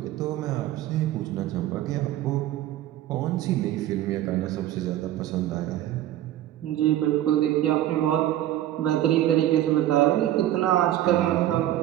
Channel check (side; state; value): left; quieter; 13.1 dB